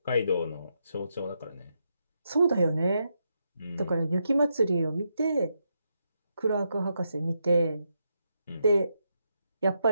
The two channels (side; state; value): both; inverted; correlation -0.82